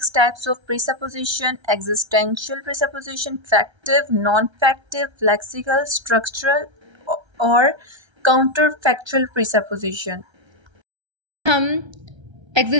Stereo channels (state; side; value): late; left; 1.3 ms